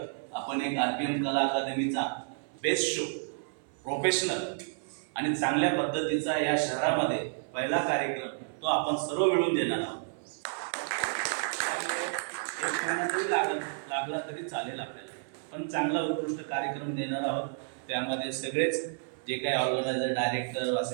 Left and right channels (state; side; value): silent; left; 57 dB below the other